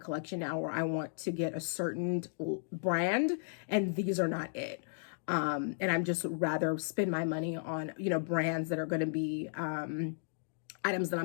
now where I want to get a certain brand, and these are not it. And I'm just rather spend my money on, brands that are going to be items that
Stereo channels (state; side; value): silent; right; digital silence